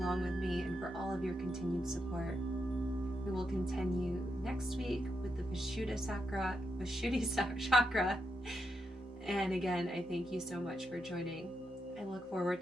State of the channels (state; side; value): normal; both; correlation 0.83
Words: with me and for all of your continued support. We will continue next week with the Vishuddha Chakra. And again, I thank you so much for joining. I look forward